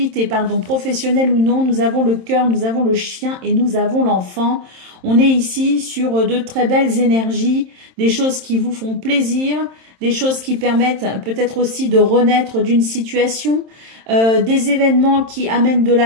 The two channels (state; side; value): late; left; 27 ms